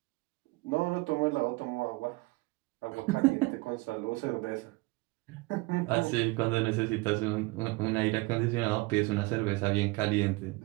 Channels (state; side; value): quieter; left; 23.8 dB